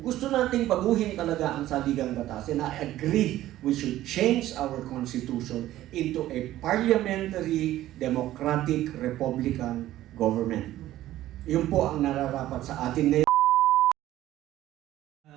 gusto nating baguhin talaga ang saligang batas, and I agree we should change our constitution into a parliamentary, democratic, republican government. Yun po ang nararapat sa atin ngayon.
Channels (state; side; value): quieter; left; 14.3 dB